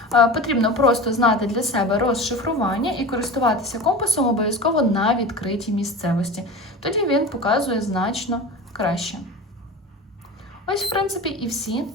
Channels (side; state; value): both; normal; correlation 0.31